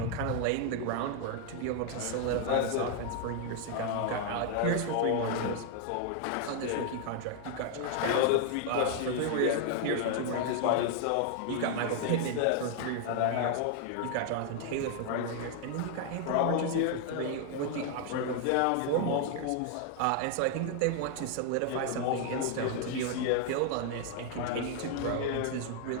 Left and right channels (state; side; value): different; both; correlation 0.00